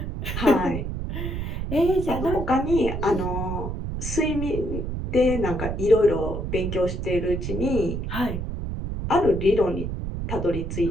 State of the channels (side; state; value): right; noise; rumble, 4 dB below the sound